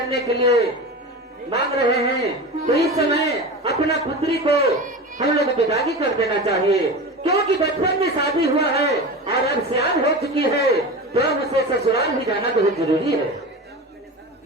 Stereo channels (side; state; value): both; normal; correlation 0.28